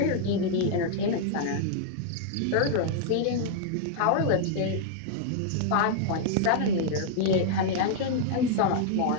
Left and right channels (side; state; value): both; different; correlation -0.01